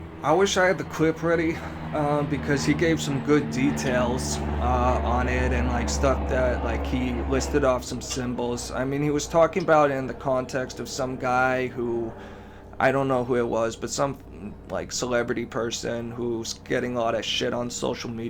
I wish I had the clip ready, because he gave some good details on it, and stuff that he listed off some symbols. He was talking about it in the context of some guy who, I don't know who it was, but some celebrity person who's getting a lot of shit on social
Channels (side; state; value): both; identical; correlation 1.00